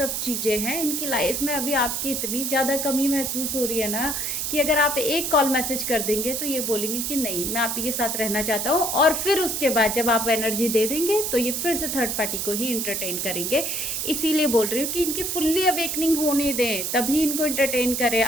चीज़ें हैं इनकी लाइफ में। अभी आपकी इतनी ज़्यादा कमी महसूस हो रही है ना कि अगर आप एक कॉल मैसेज कर देंगे तो ये बोलेंगे कि नहीं, मैं आप ही के साथ रहना चाहता हूँ, और फिर उसके बाद जब आप एनर्जी दे देंगे तो ये फिर से थर्ड पार्टी को ही इंटरटेन करेंगे। इसीलिए बोल रही हूँ कि इनकी फुल्ली अवेकनिंग होने दें, तभी इनको इंटरटेन करें।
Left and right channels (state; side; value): noise; right; hiss, 1 dB below the sound